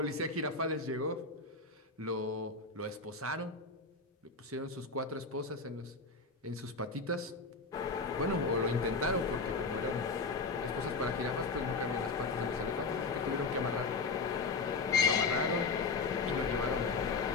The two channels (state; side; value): quieter; right; 4.0 dB